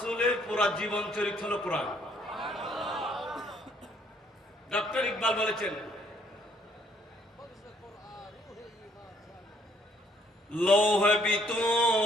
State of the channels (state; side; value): normal; both; correlation 0.65